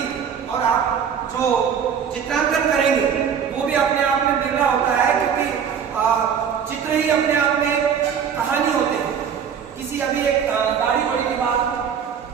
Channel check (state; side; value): quieter; left; 7.6 dB